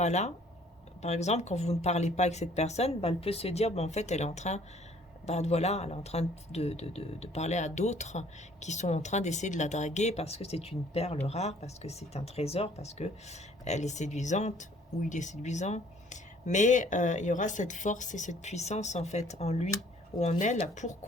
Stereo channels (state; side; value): normal; both; correlation 0.58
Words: là, par exemple, quand vous ne parlez pas avec cette personne, bah, elle peut se dire, bah, en fait, elle est en train... Bah, voilà, elle est en train de parler à d'autres qui sont en train d'essayer de la draguer parce que c'est une perle rare, parce que c'est un trésor, parce que elle est séduisante ou il est séduisant. Mais il y aura cette force et cette puissance en fait en lui ou en elle pour